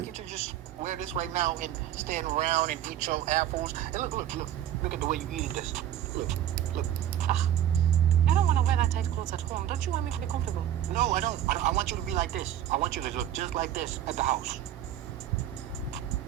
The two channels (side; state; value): left; quieter; 11.3 dB